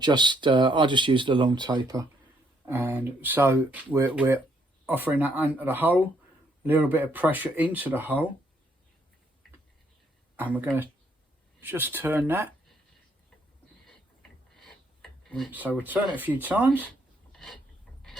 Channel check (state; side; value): normal; both; correlation 0.71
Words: use the long taper. And so we're offering that into the hole, a little bit of pressure into the hole, and we're going to just turn that. So we'll turn it a few times.